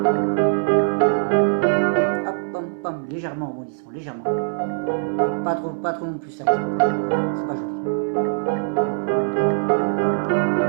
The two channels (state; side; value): silent; left; 64 dB below the other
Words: Hop, pom, pom, légèrement en rebondissant, légèrement. Pas trop non plus sec. C'est pas joli.